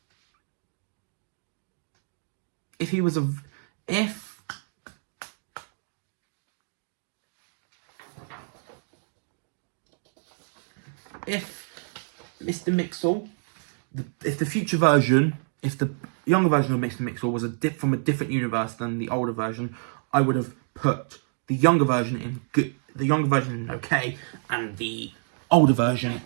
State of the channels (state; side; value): silent; left; 60 dB below the other